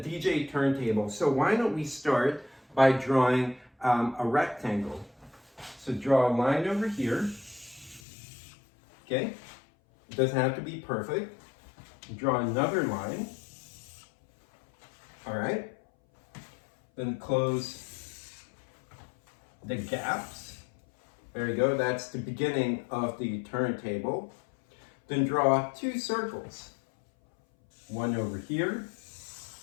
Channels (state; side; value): drops out; right; at 8.0 s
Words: turntable. So why don't we start by drawing a rectangle? So draw a line over here. Okay, it doesn't have to be perfect. Draw another line. All right, then close the gaps. There you go, that's the beginning of the turntable. Then draw two circles. One over here.